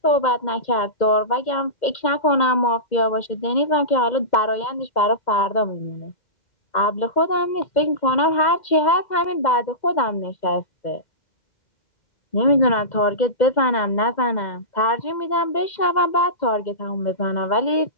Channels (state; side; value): late; right; 2.1 ms